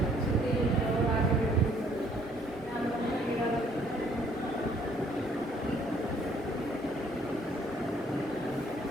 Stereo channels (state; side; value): normal; both; correlation 0.63